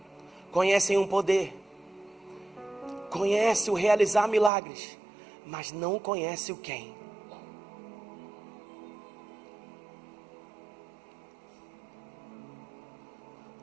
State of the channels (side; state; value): left; drops out; at 4.5 s